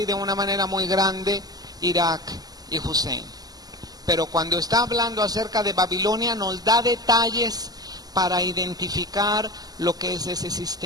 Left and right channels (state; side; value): late; left; 0.18 ms